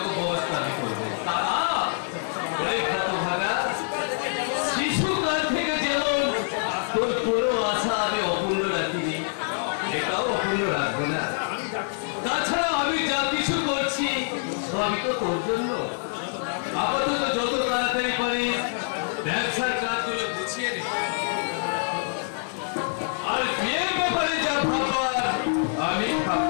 ব্যবস্থা আমি করবো। দাদা হতভাগা, শিশুকাল থেকে যেমন তোর কোনো আশা আমি অপূর্ণ রাখিনি, এটাও অপূর্ণ রাখবো না। তাছাড়া আমি যা কিছু করছি সবই তো তোর জন্য। আপাতত যত তাড়াতাড়ি পারি ব্যবসার কাজগুলো গুছিয়ে নে, আর বিয়ের ব্যাপারে যা ভাববার আমি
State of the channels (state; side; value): silent; right; digital silence